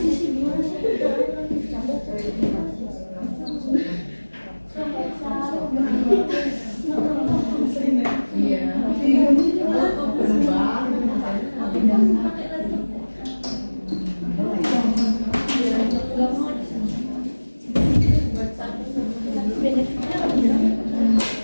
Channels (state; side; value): inverted; both; correlation -1.00